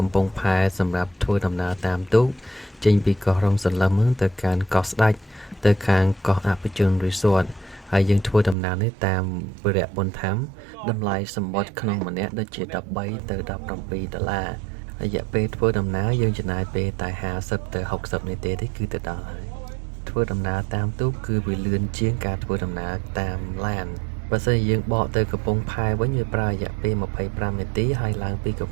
ំពង់ផែសម្រាប់ធ្វើដំណើរតាមទូកចេញពីកោះរំសន្លឹមទៅកាន់កោះស្ដេចទៅខាងកោះអភិជន Resort ហើយយើងធ្វើដំណើរនេះតាមវិរៈបុណ្យធម្មតម្លៃសម្បត្តិក្នុងម្នាក់ដូចជា13ទៅ$17រយៈពេលធ្វើដំណើរយើងចំណាយពេលតែ50ទៅ60នាទីទេគឺទៅដល់ហើយធ្វើដំណើរតាមទូកគឺវាលឿនជាងការធ្វើដំណើរតាមឡានបើសិនជាយើងបកទៅកំពង់ផែវិញវាប្រើរយៈពេល25នាទីហើយឡើងពីកំ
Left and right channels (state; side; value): drops out; left; at 8.6 s